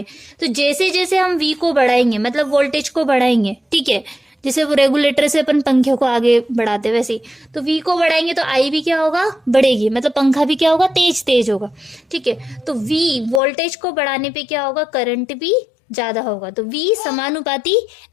तो जैसे जैसे हम वी को बढ़ाएंगे मतलब वोल्टेज को बढ़ाएंगे, ठीक है, जैसे वो रेगुलेटर से अपन पंखे को आगे बढ़ाते वैसे ही, तो वी को बढ़ाएंगे तो आई भी क्या होगा, बढ़ेगी, मतलब पंखा भी क्या होगा, तेज तेज होगा, ठीक है। तो वी वोल्टेज को बढ़ाने पे क्या होगा, करंट भी ज्यादा होगा, तो वी समानुपाती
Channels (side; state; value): right; drops out; at 13.4 s